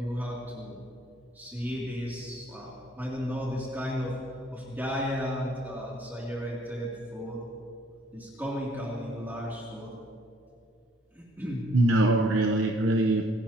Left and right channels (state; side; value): normal; both; correlation 0.62